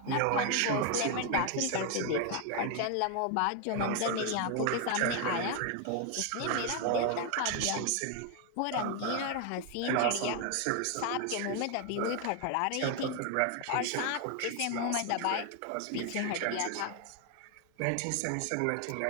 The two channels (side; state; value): both; different; correlation 0.01